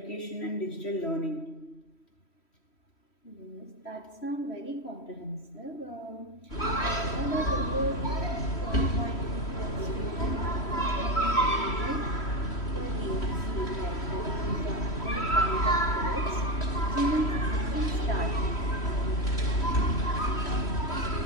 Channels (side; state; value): right; late; 3.1 ms